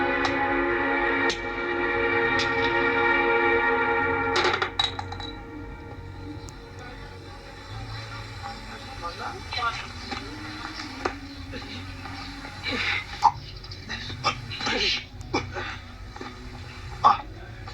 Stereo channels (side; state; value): both; identical; correlation 1.00